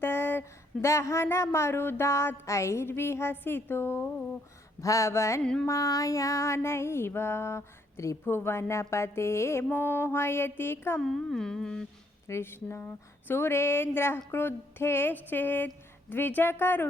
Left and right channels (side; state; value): both; normal; correlation 0.70